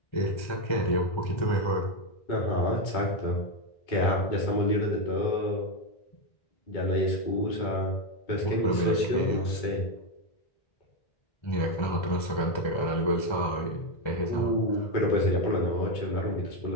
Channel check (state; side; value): late; right; 1.3 ms